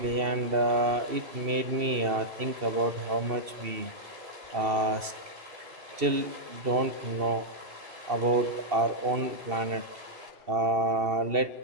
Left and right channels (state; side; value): late; left; 2.7 ms